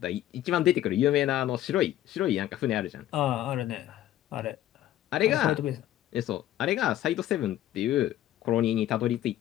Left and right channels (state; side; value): quieter; right; 13.0 dB